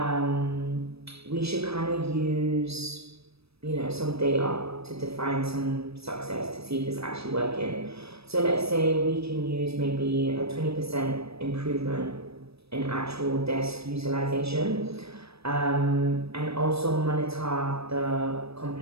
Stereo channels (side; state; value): left; late; 0.78 ms